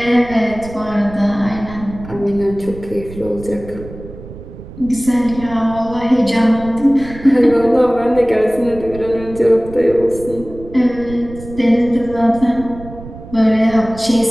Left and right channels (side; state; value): right; noise; rumble, 15 dB below the sound